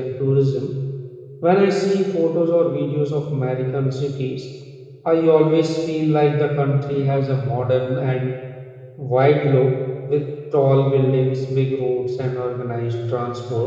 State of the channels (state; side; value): identical; both; correlation 1.00